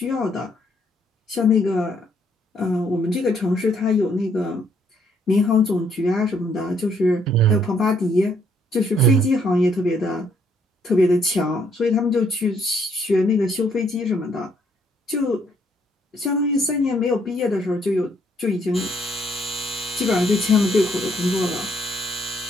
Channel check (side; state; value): both; normal; correlation 0.69